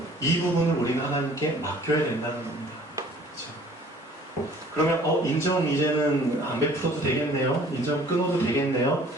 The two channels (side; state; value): both; normal; correlation 0.53